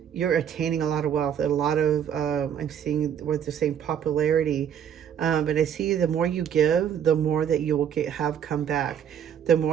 you're attaining a lot of wealth, a lot of, I'm seeing what they're saying, popularity. But I see the more you give, the more that you will have come back. The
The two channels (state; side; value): quieter; left; 8.8 dB